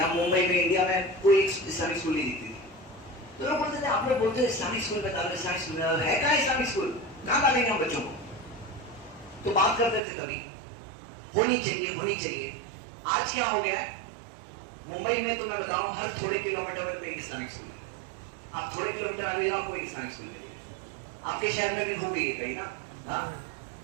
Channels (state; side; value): drops out; left; at 10.0 s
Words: मुंबई में इंडिया में कोई एक इस्लामिक स्कूल नहीं दिखती थी। तो लोग बोलते थे, आप लोग बोलते हैं इस्लामिक स्कूल में डालो, इस्लामिक स्कूल में डालो, है कहाँ इस्लामिक स्कूल, कहाँ डालेंगे हम बच्चों को। तो बात करते थे कभी होनी चाहिए होनी चाहिए। आज क्या हो गया है, मुंबई में तो मैं बताऊं हर थोड़े किलोमीटर पे एक इस्लामिक स्कूल है। आप थोड़े किलोमीटर आ रहे हो आपको एक इस्लामिक स्कूल मिलेगा। आपके शहर में भी हो गई है कहीं ना। हाँ